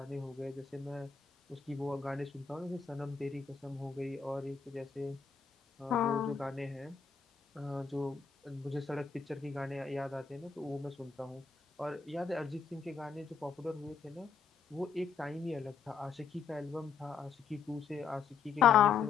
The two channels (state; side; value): quieter; right; 6.1 dB